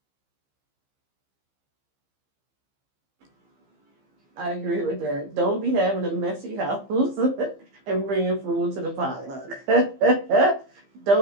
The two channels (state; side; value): late; left; 15 ms